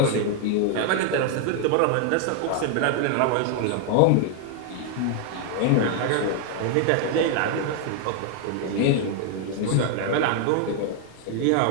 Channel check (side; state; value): both; different; correlation 0.00